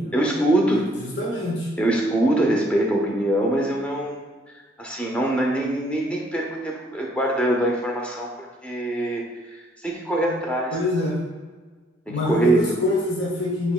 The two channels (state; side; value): normal; both; correlation 0.65